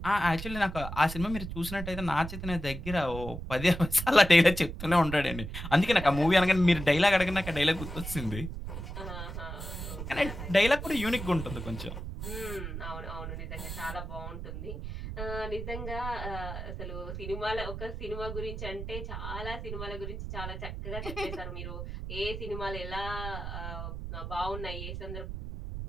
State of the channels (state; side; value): noise; right; rumble, 7 dB below the sound